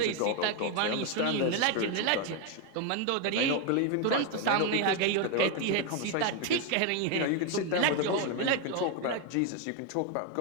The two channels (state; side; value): different; both; correlation 0.01